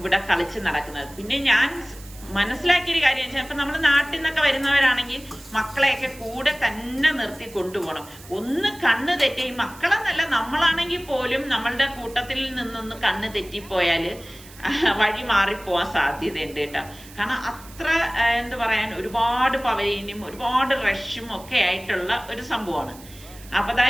കളിച്ച് നടക്കുന്നത്. പിന്നെ ഞാൻ മനസ്സിലാക്കിയൊരു കാര്യം വെച്ചാൽ ഇപ്പൊ നമ്മുടെ നാട്ടിൽ നിന്നൊക്കെ വരുന്നവരാണെങ്കിൽ മക്കളെയൊക്കെ കൂടെ തന്നെ നിർത്തി കൊണ്ടുപോകണം. ഒന്ന് കണ്ണ് തെറ്റി, ഈ മക്കളെന്നല്ല നമ്മളാണെങ്കിൽ പോലും നമ്മളുടെ കൂട്ടത്തിൽ നിന്നൊന്ന് കണ്ണ് തെറ്റിപ്പോയാല് വഴി മാറിപ്പോവാൻ സാധ്യതയുണ്ട് കേട്ടോ. കാരണം അത്ര എന്ത് പറയാൻ, ഒരുപാട് പവലിയനും ഒരുപാട് റഷും ഒക്കെ ആയിട്ടുള്ള ഒരു സംഭവമാണ്. അപ്പൊ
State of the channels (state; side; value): noise; right; hiss, 20 dB below the sound